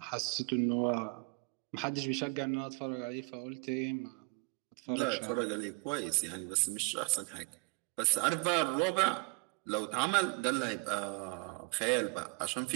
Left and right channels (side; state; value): left; quieter; 32.3 dB